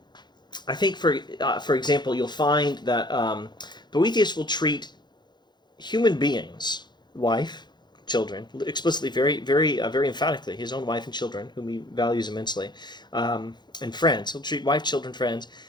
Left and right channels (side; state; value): right; late; 0.21 ms